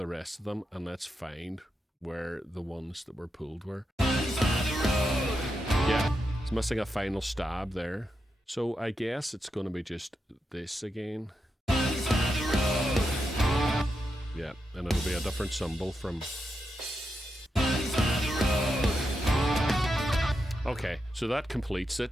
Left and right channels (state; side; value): normal; both; correlation 0.86